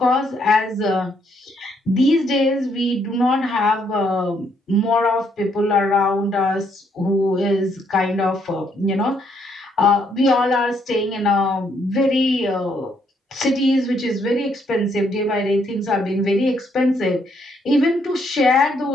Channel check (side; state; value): both; normal; correlation 0.72